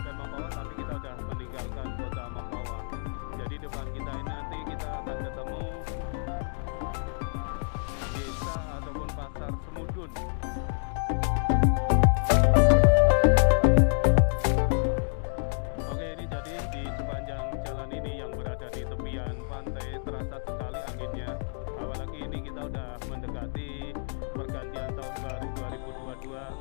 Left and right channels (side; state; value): right; silent; digital silence